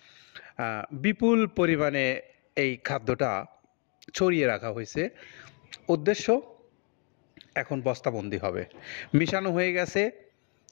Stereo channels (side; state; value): right; quieter; 37.5 dB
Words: বিপুল পরিমাণে এই খাদ্যটা ছড়িয়ে রাখা হয়েছে। উদ্দেশ্য, এখন বস্তাবন্দি হবে, মিশানো হয়ে গেছে।